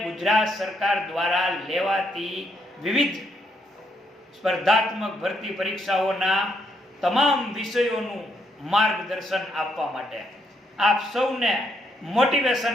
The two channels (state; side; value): normal; both; correlation 0.75